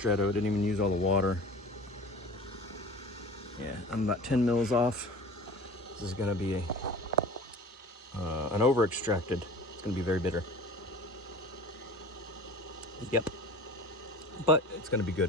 Didn't even use all the water. Yeah, I'm about 10 mils off. This is gonna be an over extracted. It's gonna be very bitter. Yep. But it's gonna be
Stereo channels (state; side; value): normal; both; correlation 0.40